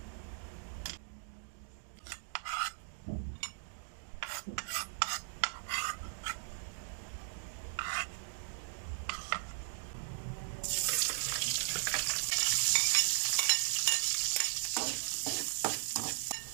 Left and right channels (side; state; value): left; silent; digital silence